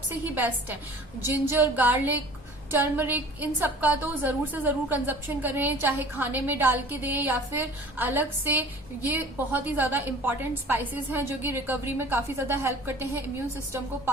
ही बेस्ट है। जिंजर, गार्लिक, टर्मरिक, इन सब का तो जरूर से जरूर कंजप्शन करें, चाहे खाने में डाल के दें या फिर अलग से। ये बहुत ही ज्यादा इंपॉर्टेंट स्पाइसेस हैं जो कि रिकवरी में काफी ज्यादा हेल्प करते हैं, इम्यून सिस्टम को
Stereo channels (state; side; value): normal; both; correlation 0.45